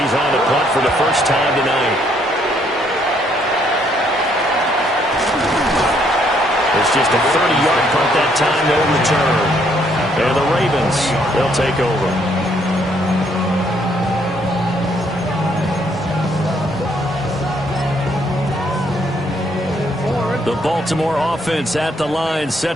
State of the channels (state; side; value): normal; both; correlation 0.69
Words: on to punt for the first time tonight. It's just a 30-yard punt that time, no return. And the Ravens, they'll take over. The Baltimore offense at the line,